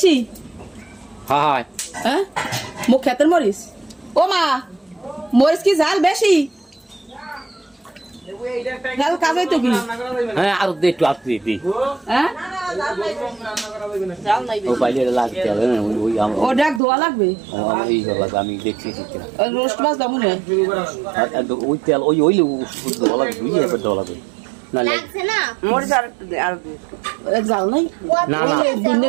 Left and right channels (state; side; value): drops out; left; at 16.8 s